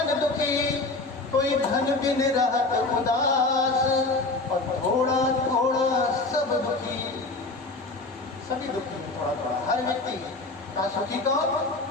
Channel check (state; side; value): quieter; right; 3.3 dB